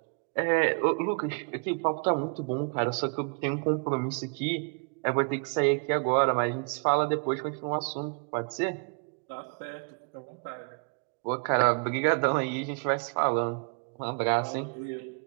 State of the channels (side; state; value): left; quieter; 38.5 dB